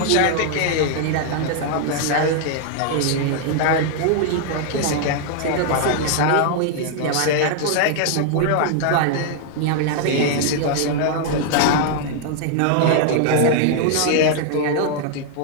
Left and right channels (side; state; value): both; different; correlation 0.00